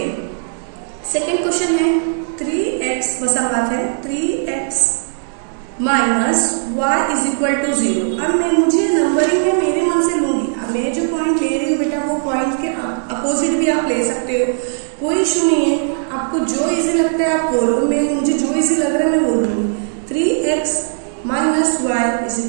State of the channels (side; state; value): left; silent; digital silence